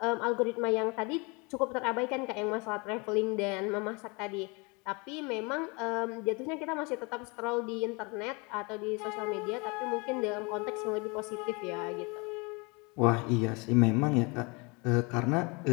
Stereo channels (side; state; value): right; quieter; 29.2 dB